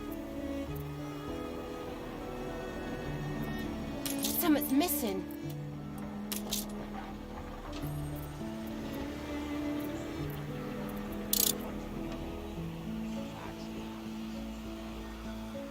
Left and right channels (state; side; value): identical; both; correlation 1.00